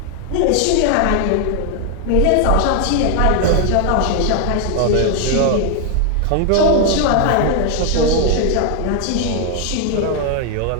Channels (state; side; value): different; both; correlation 0.00